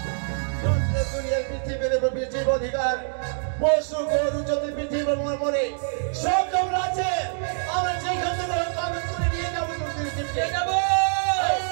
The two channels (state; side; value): silent; left; digital silence